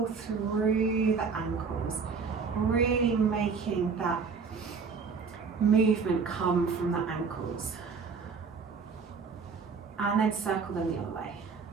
through the ankles, really making that movement come from the ankles. And then circle them the other way.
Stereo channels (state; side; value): quieter; left; 5.4 dB